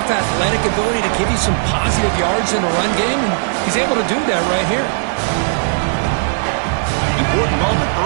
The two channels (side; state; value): left; silent; digital silence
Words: athletic ability to give you some positive yards in the run game, and he's able to do that right here. Important moment